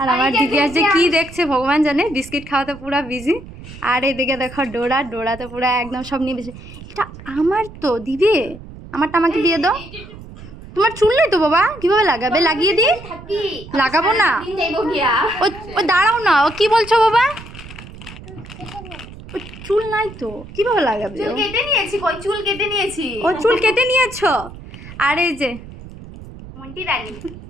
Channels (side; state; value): right; noise; rumble, 16 dB below the sound